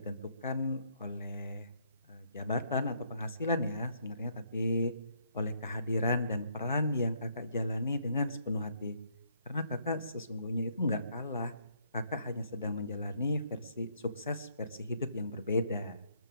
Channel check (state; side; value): inverted; both; correlation -0.70